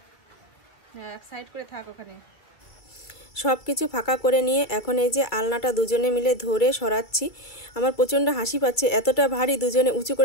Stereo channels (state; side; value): late; right; 2.3 ms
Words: হ্যাঁ, এক সাইড করে থাক ওখানে। সব কিছু ফাঁকা করে নিয়ে এখন এই যে আলনাটা দুজনে মিলে ধরে সরাচ্ছি। আমার প্রচণ্ড হাসি পাচ্ছে, এতটা ভারী, দুজনে উঁচু